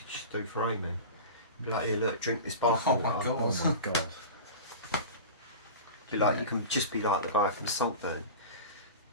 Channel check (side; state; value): both; inverted; correlation -0.32